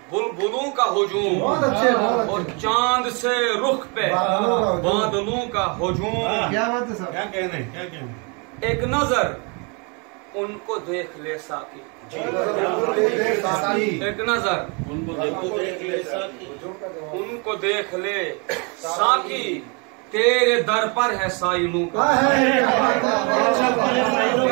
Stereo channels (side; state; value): left; quieter; 33.3 dB